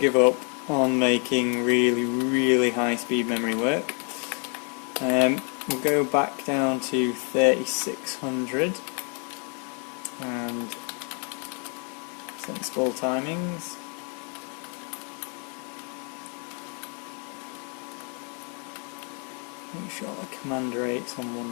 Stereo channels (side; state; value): right; quieter; 38.8 dB